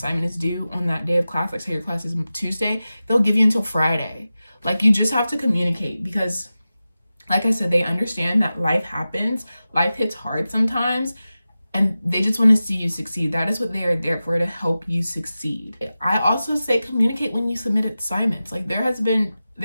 is due on that day of class, like say your class is Tuesday, they'll give you until Friday. Like, you just have to communicate, because like I said, they understand that life happens. Life hits hard sometimes, and they just want to see you succeed. That is what they are there for, to help you succeed. I also say communicate when you submit assignments. Like, there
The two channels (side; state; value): both; inverted; correlation -0.94